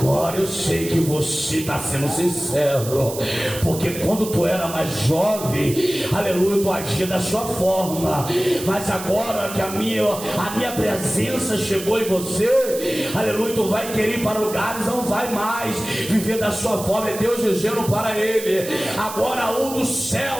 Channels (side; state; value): right; noise; hiss, 10 dB below the sound